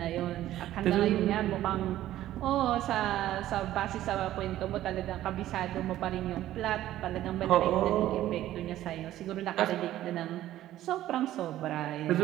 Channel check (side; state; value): left; quieter; 13.6 dB